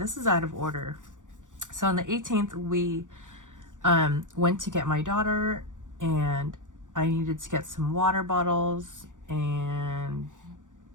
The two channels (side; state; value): left; late; 0.87 ms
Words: is out of order. So on the 18th, we went to get my daughter, and I needed to get some water bottles, and